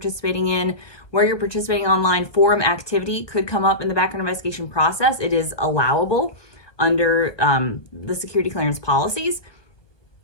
in, where you're participating online. Forum activity could come up in the background investigation process. It is allowable under the security clearance policies.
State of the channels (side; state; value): right; late; 1.2 ms